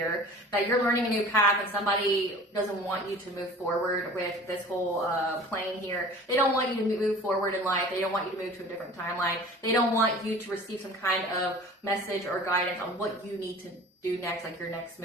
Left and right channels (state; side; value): normal; both; correlation 0.43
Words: that you're learning a new path and somebody doesn't want you to move forward with this whole plane here. They don't want you to move forward in life. They don't want you to move to a different timeline. They don't want you to receive some kind of message or guidance on what you need to do next, like your next